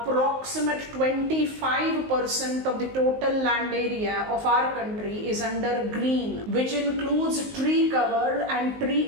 25% of the total land area of our country is under green, which includes tree cover and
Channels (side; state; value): left; late; 19 ms